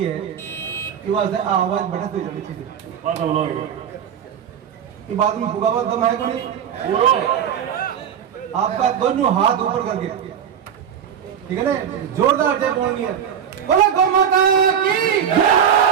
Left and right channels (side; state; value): left; quieter; 8.4 dB